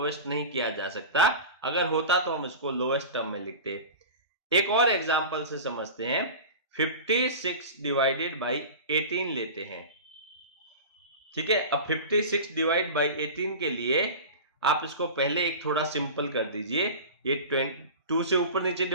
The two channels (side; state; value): both; inverted; correlation -0.31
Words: नहीं किया जा सकता। अगर होता तो हम इसको लोएस्ट टर्म में लिखते। एक और एग्जांपल से समझते हैं, 56 डिवाइडेड बाई 18 लेते हैं। ठीक है, अब 56 डिवाइड बाई 18 के लिए आप इसको पहले एक थोड़ा सिंपल कर दीजिए, ये 2 से ऊपर नीचे